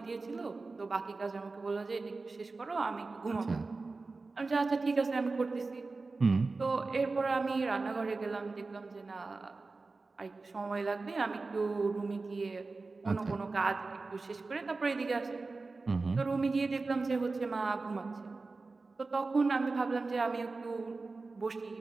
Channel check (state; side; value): quieter; left; 3.8 dB